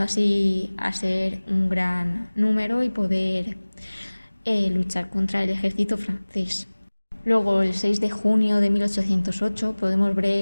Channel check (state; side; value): inverted; both; correlation -1.00